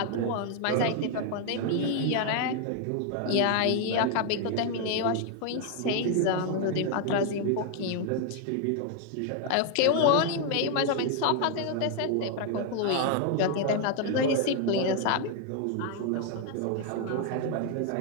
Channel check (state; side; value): different; both; correlation 0.00